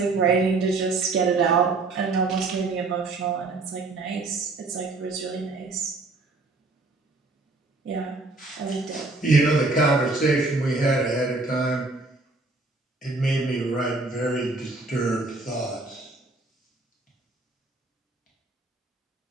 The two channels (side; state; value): left; quieter; 3.5 dB